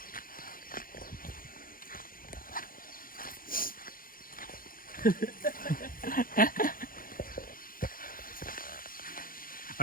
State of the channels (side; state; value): right; late; 0.41 ms